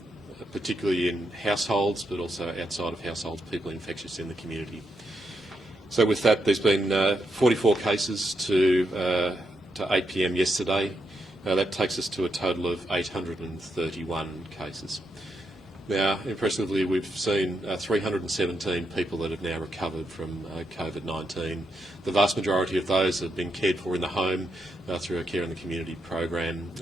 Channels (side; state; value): both; normal; correlation 0.82